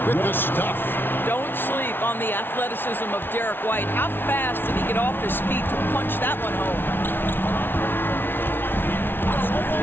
with the stuff. Don't sleep on the athleticism of Derek White. How fast did he get off his feet to punch that one home?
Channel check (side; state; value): right; late; 0.10 ms